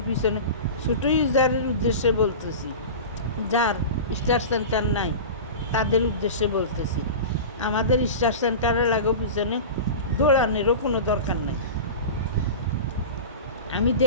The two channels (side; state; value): both; inverted; correlation -0.31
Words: পিছনে ছোটো ইউজারের উদ্দেশ্যে বলতেছি, যার স্টার সেন্টার নাই তাদের উদ্দেশ্যে বলতেছি, আমাদের স্টার সেন্টারের লাগো পিছনে দৌড়ানোরও কোনো দরকার নাই। আমি